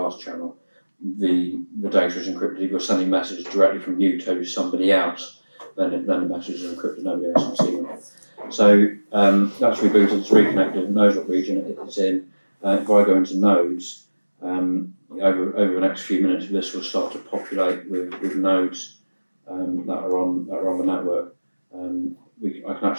channel, the data is encrypted. If you're sending messages directly from you to somebody else, then the messages are encrypted. Nobody else can see them. So that's rebooted, it's reconnected, it knows what region it's in. If I go into nodes, over the next few minutes, this will start to populate with nodes that are on the network. I can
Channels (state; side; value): inverted; both; correlation -1.00